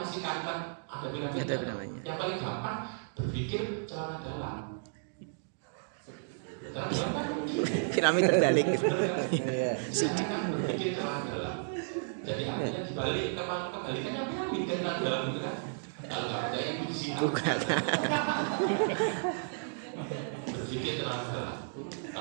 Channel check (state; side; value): silent; left; digital silence